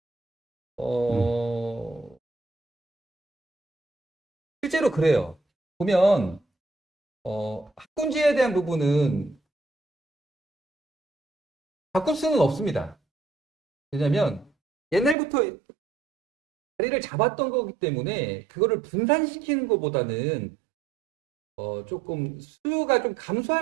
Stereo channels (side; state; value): left; drops out; at 15.2 s